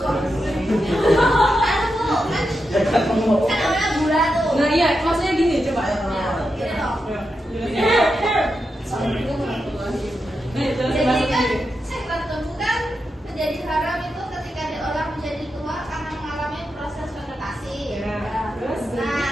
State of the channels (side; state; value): both; normal; correlation 0.87